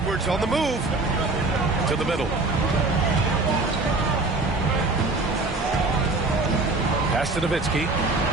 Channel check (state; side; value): quieter; left; 3.3 dB